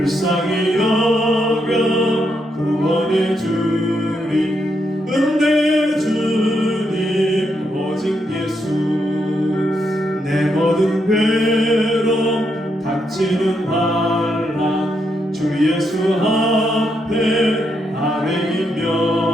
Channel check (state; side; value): normal; both; correlation 0.79